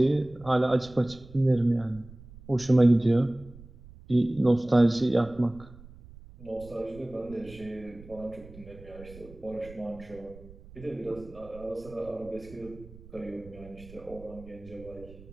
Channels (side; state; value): right; noise; rumble, 19 dB below the sound